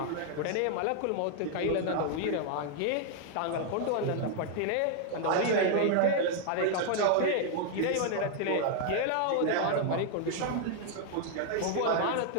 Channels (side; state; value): both; different; correlation 0.00